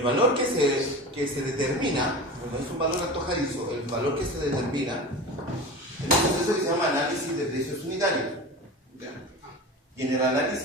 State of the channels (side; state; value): both; normal; correlation 0.31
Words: valor que se determina, no es un valor antojadizo, el valor que se determina en un proceso que se llama análisis de precios unitarios. ¿Ya? Y en el